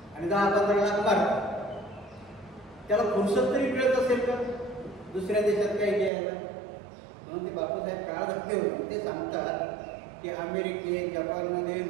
आणि 10-15 लाख मारतात. त्याला फुरसत तरी मिळत असेल का दुसऱ्या देशात काही घ्यायला? म्हणून ते बापूसाहेब काळ धक्के होते. ते सांगतात की अमेरिकेत जपानमध्ये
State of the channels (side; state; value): left; drops out; at 6.1 s